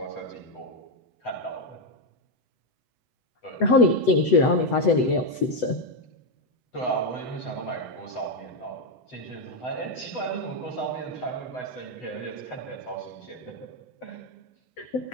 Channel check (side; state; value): right; late; 8.0 ms